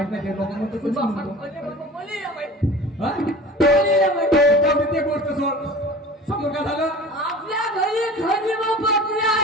नाही लोक म्हणतो कुठे म्हणतो बोली या बाई. हा बोली या बाई. ते गोष्ट सोड. समोर काय झालं? आपल्या घरी खंडी बकरे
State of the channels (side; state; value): both; normal; correlation 0.39